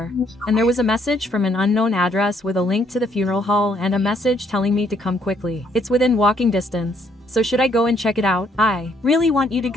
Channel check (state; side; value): normal; both; correlation 0.69